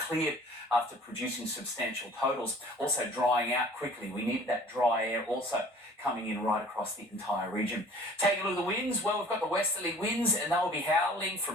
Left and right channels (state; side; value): normal; both; correlation 0.50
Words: after producing substantial totals. Also drying out quickly. We needed that dry air also coming in right across the entire region. Taking a look at the winds, well, we've got the westerly winds and they'll be howling